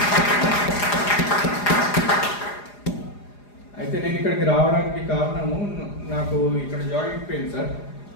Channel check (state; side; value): late; right; 4.9 ms